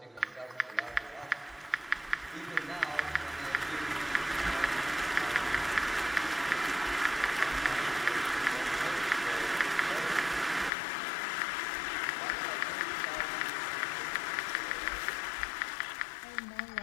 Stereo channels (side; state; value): right; drops out; at 10.7 s